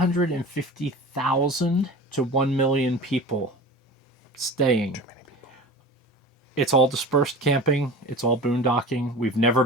to 1 million people staying. It's all dispersed camping. It's all boondocking. We've never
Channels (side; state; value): both; normal; correlation 0.35